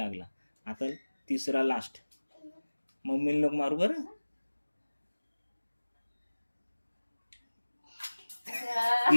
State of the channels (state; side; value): inverted; both; correlation -1.00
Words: आता तिसरा लास्ट. मम्मीला नको मारू बरं.